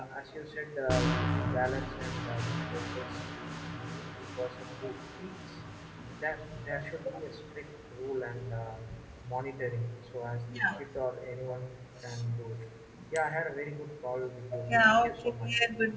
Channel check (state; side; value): identical; both; correlation 1.00